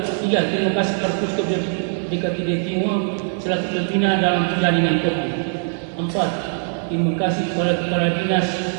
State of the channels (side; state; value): left; silent; digital silence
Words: kasih kepada Puskop BKTD Timur selaku pembina dalam jaringan kopi. 4. Terima kasih kepada Kepala Dinas